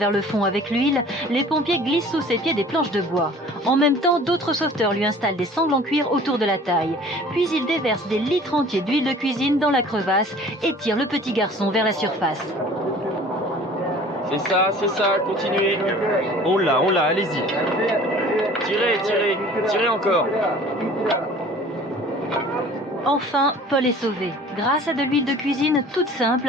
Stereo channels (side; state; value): both; normal; correlation 0.48